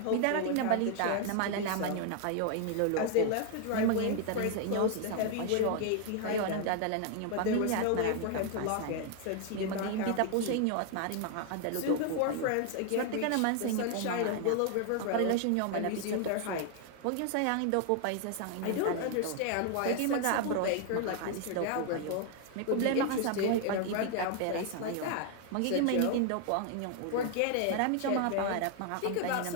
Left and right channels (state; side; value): different; both; correlation 0.00